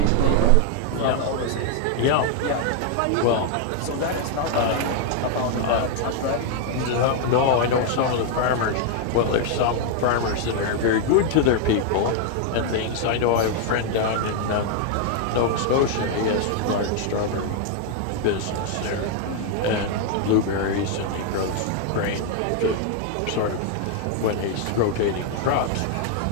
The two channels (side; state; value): both; different; correlation 0.00